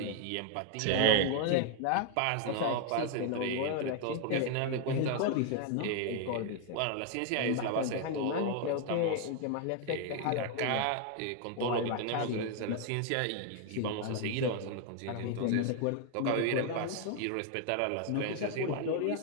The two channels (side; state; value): both; different; correlation 0.00